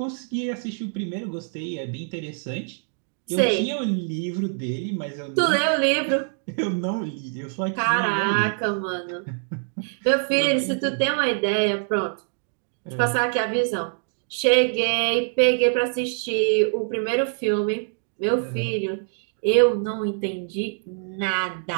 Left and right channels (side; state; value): left; silent; 62 dB below the other